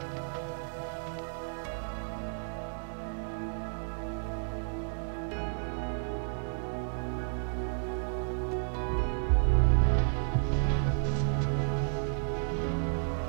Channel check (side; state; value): left; silent; digital silence